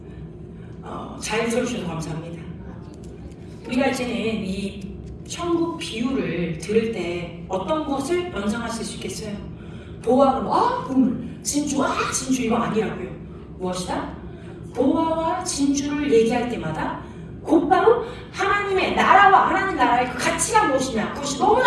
잘 들어주셔서 감사합니다. 우리가 이제는 이 천국 비유를 들을 때 어떤 것을 연상하실 수 있겠어요? 보화가 보물, 진주, 진주 이거 아니라고요. 무엇이다? 보화와 진주를 얘기할 때마다 곧바로 하나님의 나라와 하나님 나라의 그 가치가 무엇이냐, 그것이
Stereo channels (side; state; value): both; identical; correlation 1.00